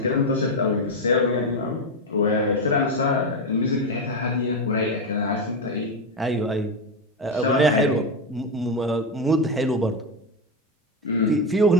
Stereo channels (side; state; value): both; normal; correlation 0.11